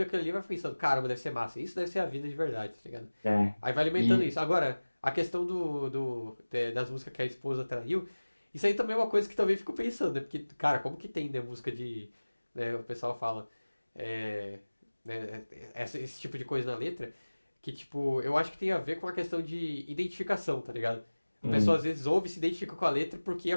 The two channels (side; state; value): both; inverted; correlation -1.00